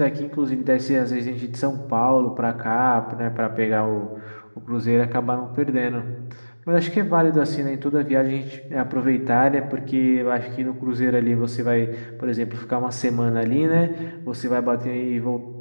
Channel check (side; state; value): both; inverted; correlation -1.00